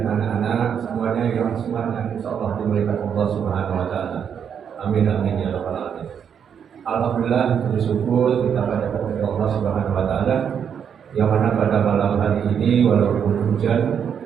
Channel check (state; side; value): quieter; left; 7.8 dB